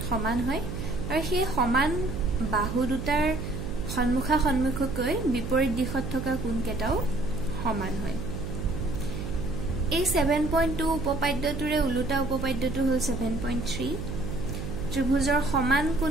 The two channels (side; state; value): right; noise; hum, 6 dB below the sound